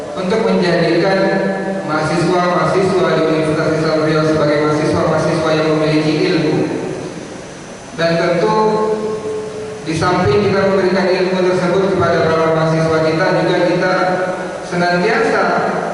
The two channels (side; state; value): both; identical; correlation 1.00